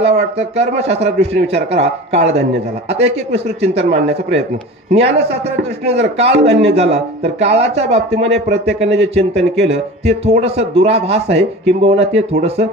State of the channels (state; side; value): normal; both; correlation 0.35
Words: वाटतं कर्मशास्त्राच्या दृष्टीने विचार करा, काळ धन्य झाला. आता एक विस्तृत चिंतन मांडण्याचा प्रयत्न. ज्ञानशास्त्राच्या दृष्टीने जर काळ धन्य झाला तर काळाच्या बाबतीमध्ये प्रत्येकाने जे चिंतन केलं ते थोडंसं दुराभास आहे, किंबहुना ते थोडंसं